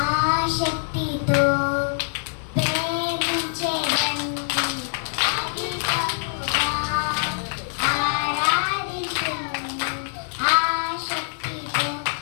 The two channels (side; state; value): right; silent; 62 dB below the other